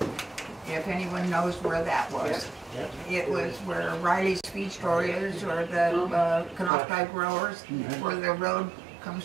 if anyone knows where that was. It was where Riley's feed store is, or the Canocti growers, where the road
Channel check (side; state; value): left; drops out; at 6.7 s